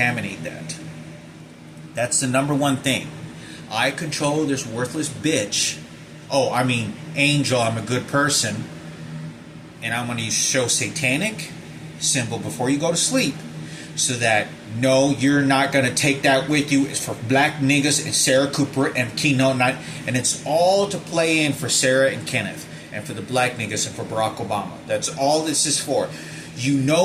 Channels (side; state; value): both; identical; correlation 1.00